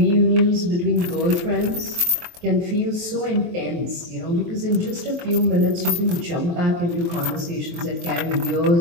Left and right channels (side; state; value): left; late; 23 ms